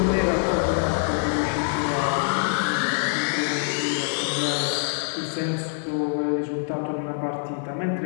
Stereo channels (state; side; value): silent; right; digital silence